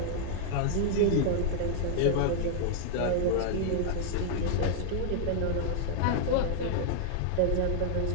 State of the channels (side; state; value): both; different; correlation -0.01